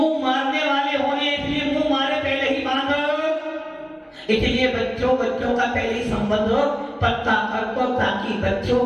मारने वाले होने, इसलिए मुंह मारे पहले ही बांधो। इसलिए बच्चों का पहले ही संबंध पक्का कर दो, ताकि बच्चों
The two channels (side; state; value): both; identical; correlation 1.00